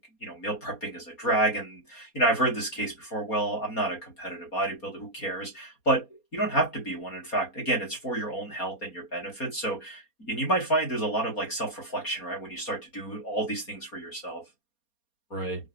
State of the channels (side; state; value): right; late; 4.3 ms